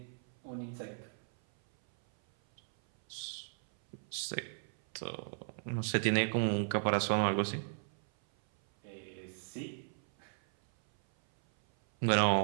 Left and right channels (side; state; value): left; silent; 54 dB below the other